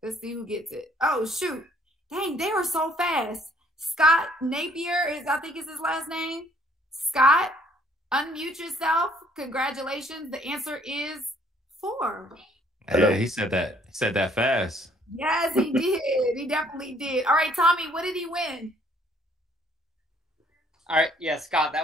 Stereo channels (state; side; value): normal; both; correlation 0.63